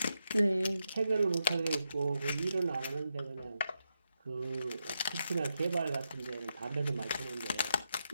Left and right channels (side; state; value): both; inverted; correlation -0.85